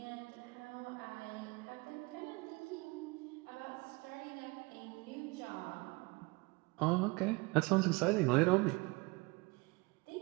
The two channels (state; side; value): quieter; left; 25.6 dB